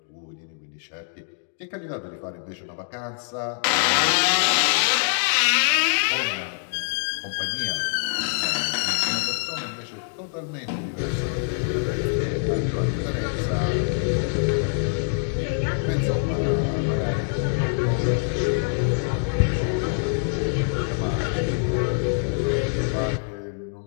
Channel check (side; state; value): right; silent; digital silence